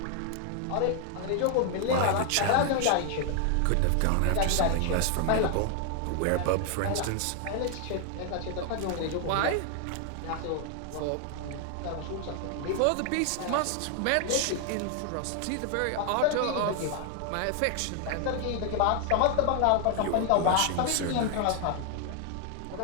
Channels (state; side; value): different; both; correlation 0.00